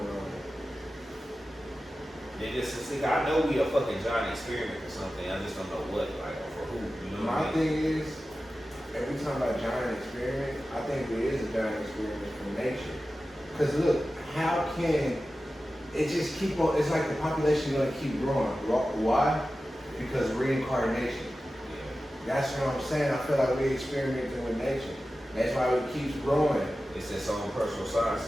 They just see, I know we a fucking giant experiment or something. I just don't know what, like, or for who. You know what I mean? My thing is, if we talking about giant experiment, I think there is a giant experiment from nature. Because look, how can it just keep on? It's like the population gonna keep growing. Why? Because reincarnation. That's what I'm saying. I feel like we experimenting with nature. That's why it keeps growing. It's its own personal science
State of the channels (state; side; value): normal; both; correlation 0.94